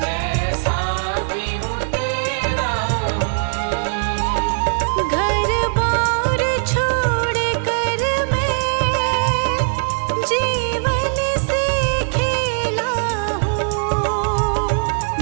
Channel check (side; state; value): left; silent; digital silence